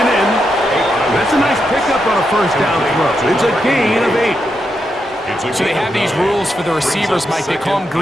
in. That's a nice pickup on a first down throw. It's a gain of 8. So they have these rules for the receivers, Mike. They call them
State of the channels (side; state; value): both; normal; correlation 0.84